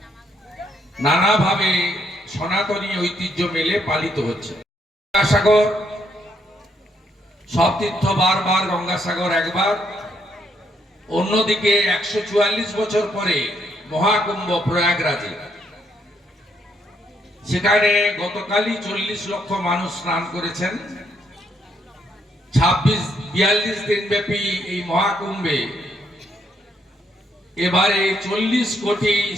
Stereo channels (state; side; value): normal; both; correlation 0.74